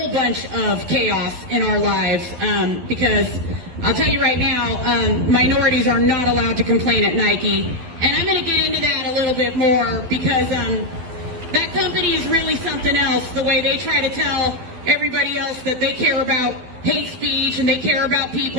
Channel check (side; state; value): left; late; 12 ms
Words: bunch of chaos in our lives, because I'll tell you right now, minorities are not allowed to complain at Nike, and I'm going to get into that a little bit more because that company is really something else, the way they try to tell everybody else that they care about hate speech and they care about